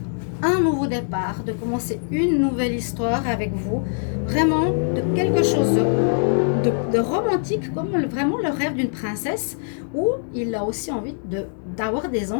un nouveau départ, de commencer une nouvelle histoire avec vous. Vraiment, de quelque chose de romantique, comme vraiment le rêve d'une princesse, où il a aussi envie d'avoir des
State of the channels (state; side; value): silent; right; digital silence